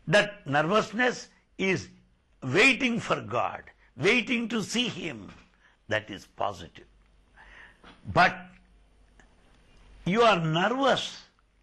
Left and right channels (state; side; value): identical; both; correlation 1.00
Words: That nervousness is waiting for God, waiting to see Him. That is positive. But you are nervous